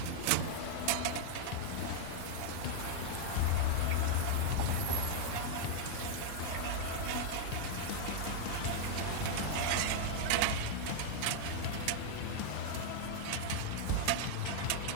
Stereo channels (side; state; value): both; different; correlation 0.00